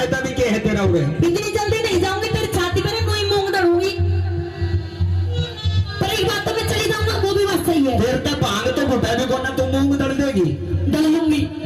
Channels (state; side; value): identical; both; correlation 1.00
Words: भी क्या है तेरा उरे। इतनी जल्दी नहीं जाऊंगी, तेरी छाती पर कोई मूंग दड़ूंगी। पर एक बात तो मैं चली जाऊंगा, वो भी बात सही है। फिर तो भांग तो घोटा भी कोना तू मूंग दड़ देगी। दल लूंगी।